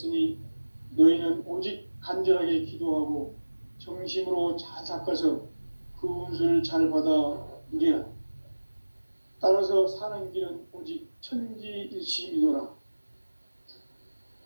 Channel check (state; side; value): inverted; both; correlation -1.00